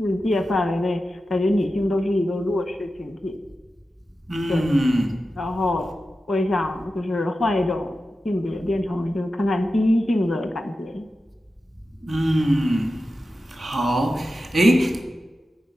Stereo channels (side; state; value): both; normal; correlation 0.92